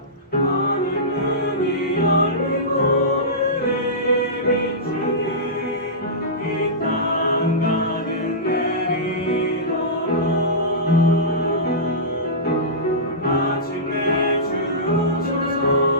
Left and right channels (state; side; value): normal; both; correlation -0.17